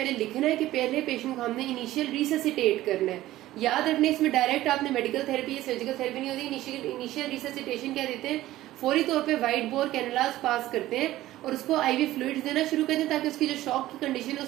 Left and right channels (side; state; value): left; quieter; 15.4 dB